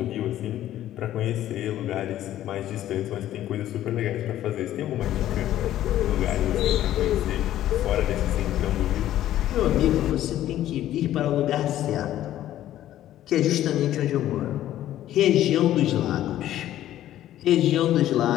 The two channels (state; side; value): quieter; right; 12.9 dB